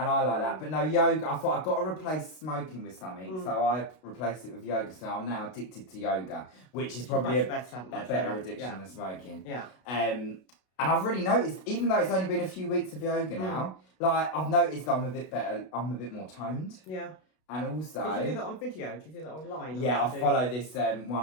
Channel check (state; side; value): late; right; 32 ms